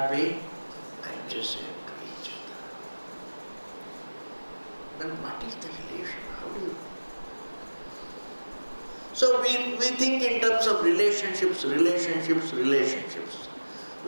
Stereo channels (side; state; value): both; inverted; correlation -1.00